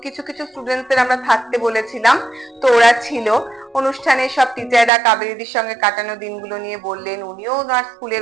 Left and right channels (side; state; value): left; drops out; at 4.9 s